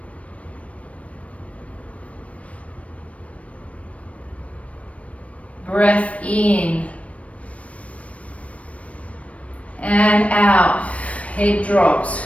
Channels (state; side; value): late; right; 0.065 ms